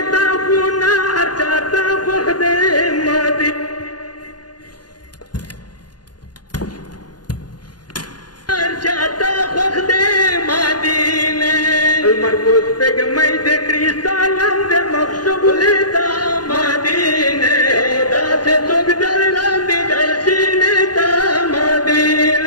تاخونه چاته مخده مدینه چاته مخده مدینه المرکوز پگمی د کریستالم د مخشبولی دا مدینه داسې څوک در لاندې د سینې دا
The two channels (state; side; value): late; right; 0.70 ms